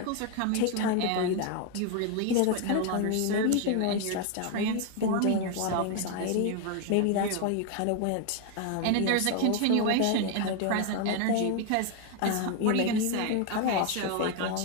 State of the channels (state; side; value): different; both; correlation 0.01